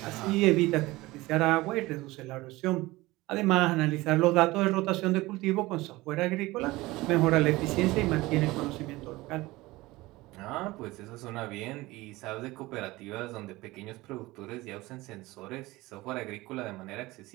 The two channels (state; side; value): quieter; left; 20.0 dB